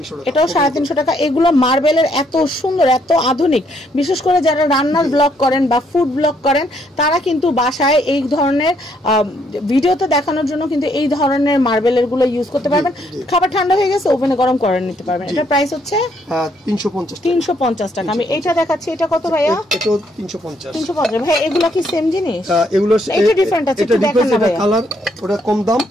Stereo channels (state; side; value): normal; both; correlation 0.71